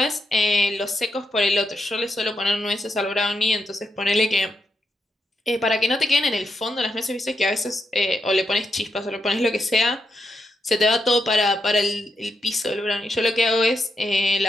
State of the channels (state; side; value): normal; both; correlation 0.83